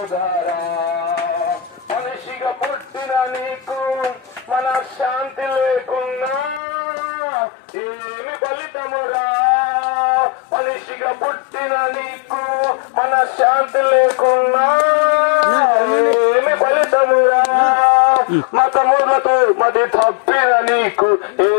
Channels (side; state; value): right; drops out; at 6.6 s